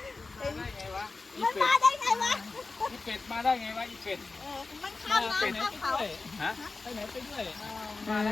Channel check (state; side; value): quieter; right; 3.9 dB